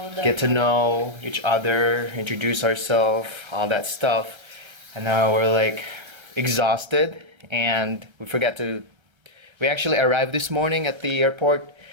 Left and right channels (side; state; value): left; late; 1.3 ms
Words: to know each other, introduce ourselves, all that stuff, and now we're like exhausted, and we actually arrived this morning at the airport,